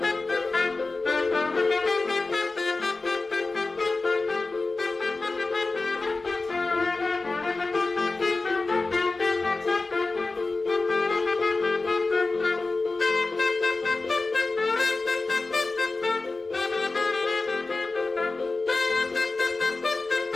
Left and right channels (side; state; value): right; quieter; 3.5 dB